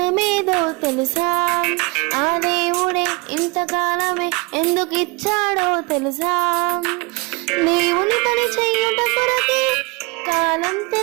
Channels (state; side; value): quieter; left; 27.9 dB